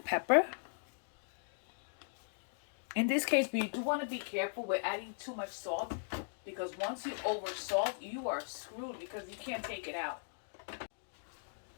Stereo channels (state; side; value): silent; right; digital silence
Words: pepper. In this case, we do want to be careful with adding too much salt because once you over salt, you are screwed because you can't take it out.